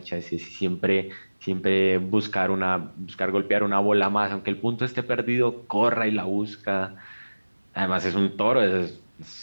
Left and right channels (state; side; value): inverted; both; correlation -1.00